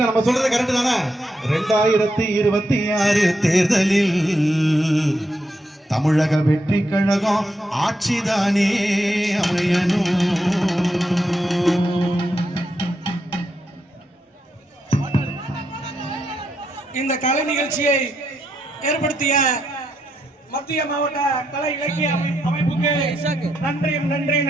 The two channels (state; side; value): normal; both; correlation 0.81